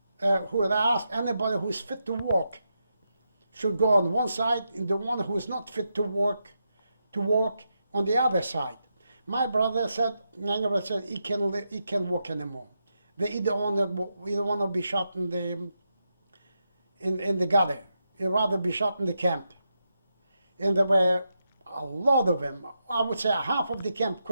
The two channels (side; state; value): both; inverted; correlation -0.85